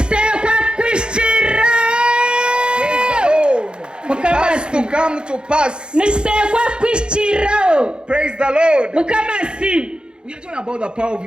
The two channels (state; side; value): late; left; 0.051 ms